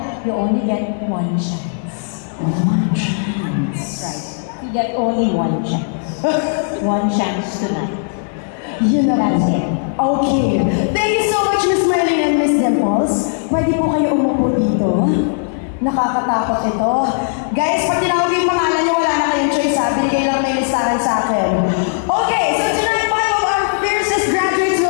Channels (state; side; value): silent; right; 56 dB below the other